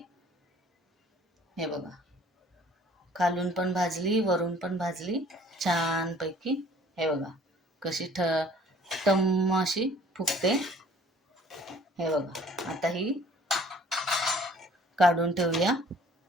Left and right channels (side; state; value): both; normal; correlation 0.54